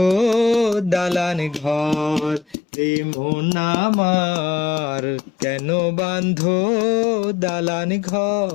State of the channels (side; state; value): right; drops out; at 2.6 s